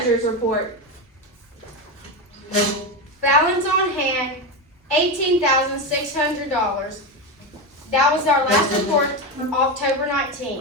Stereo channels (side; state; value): both; normal; correlation 0.14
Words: report. balance on hand, $18,600. That was our last report, October